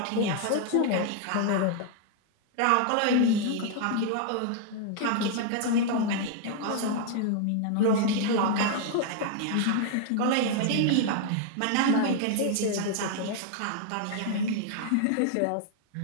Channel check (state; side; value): different; both; correlation 0.00